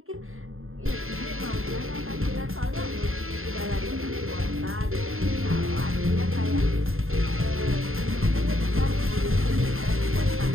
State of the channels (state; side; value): late; left; 0.61 ms